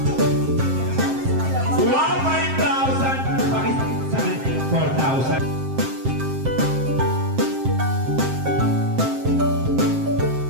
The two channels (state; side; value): late; left; 7.6 ms